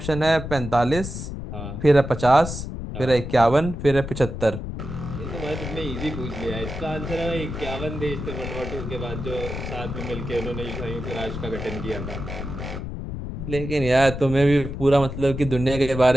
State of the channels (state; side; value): noise; left; rumble, 7 dB below the sound